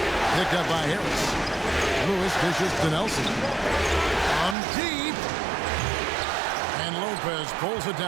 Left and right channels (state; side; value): drops out; left; at 4.5 s